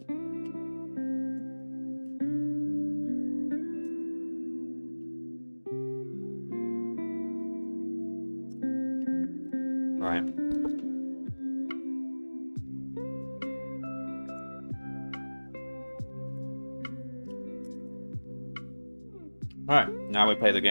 Right. Alright, now we play the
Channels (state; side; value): inverted; both; correlation -1.00